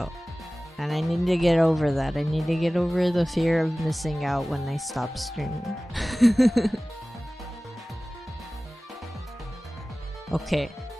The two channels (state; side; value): normal; both; correlation 0.98